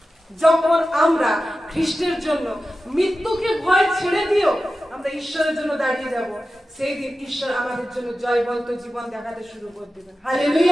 যখন আমরা খ্রিস্টের জন্য মৃত্যুকে ভয় ছেড়ে দিও আমরা ঈশ্বরের জন্য দাঁড়িয়ে যাব, সেই দিন ঈশ্বর আমাদের জন্য জয়বন্ত জীবন দেখাতে শুরু করে দেবেন।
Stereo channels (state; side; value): normal; both; correlation 0.93